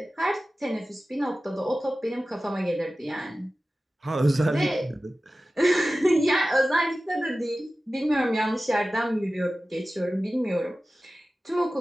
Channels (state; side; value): normal; both; correlation 0.95